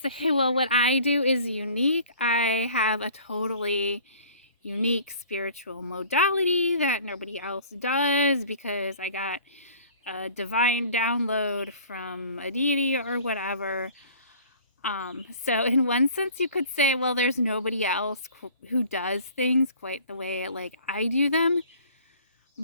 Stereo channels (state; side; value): inverted; both; correlation -0.49